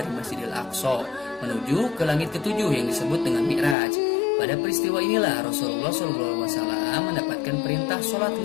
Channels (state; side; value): drops out; right; at 3.8 s